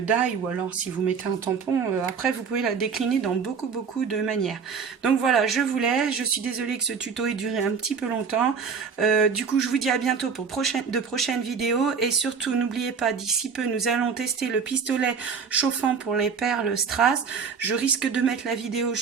die, ou alors si vous mettez un tampon, après vous pouvez la décliner dans beaucoup de manières. Donc voilà, je vous laisse, je suis désolée que ce tuto ait duré un petit peu longtemps, du coup je vous dis à bientôt pour de prochaines vidéos, et surtout n'oubliez pas, d'ici peu nous allons tester le pistolet chauffant pour les perles strass. Je risque de mettre la vidéo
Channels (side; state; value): left; quieter; 6.0 dB